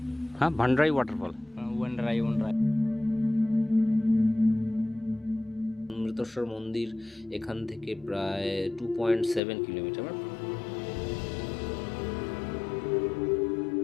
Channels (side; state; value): right; drops out; at 9.4 s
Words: ভান্ডারাই ওয়াটারফল। অমৃতেশ্বর মন্দির এখান থেকে প্রায় 2.7 কিলোমিটার।